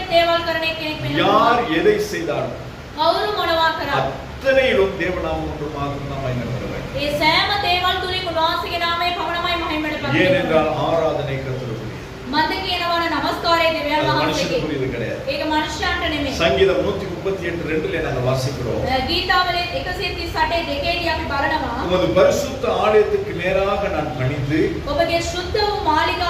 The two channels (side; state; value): both; identical; correlation 1.00